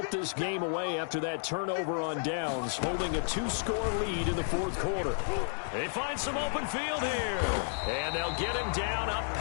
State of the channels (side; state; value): right; silent; digital silence